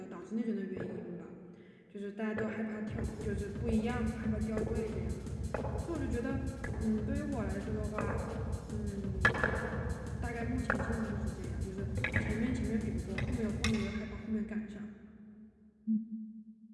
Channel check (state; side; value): identical; both; correlation 1.00